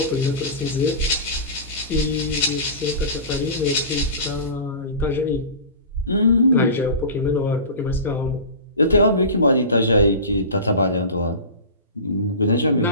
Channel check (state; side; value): inverted; both; correlation -0.32